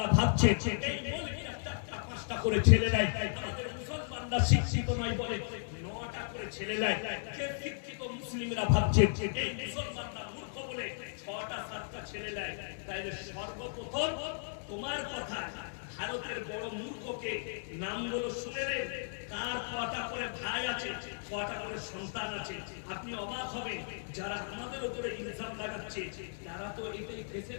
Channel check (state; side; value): silent; right; digital silence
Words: ভাবছে এই মুলকিরা 4টা 5টা করে ছেলে নেয়, আমাদের মুসলমানরা শিক্ষিত নয় বলে 9টা করে ছেলে নেয়। কে শিক্ষিত? মুসলিমরা ভাবছে এই মুসলমানরা মূর্খ বলে 6টা 7টা ছেলে নেয়। তাই সর্বপ্রথম তোমার কথা, ভারতের বড় মূর্খকে নামগুলো শুনেলেন, কার কটা করে ভাই আছে, কটা করে সন্তান আছে। আপনি অবাক হবেন, যারা আমাদের উপরে ইলজাম লাগাচ্ছে তারা তো এটাই ফেসে